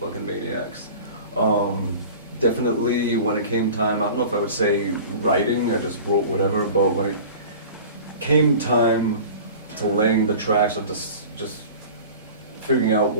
maniacs. Definitely when it came time, I don't know if I would say writing, I just wrote whatever, but when it came time to laying the tracks or just figuring out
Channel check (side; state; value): both; inverted; correlation -0.40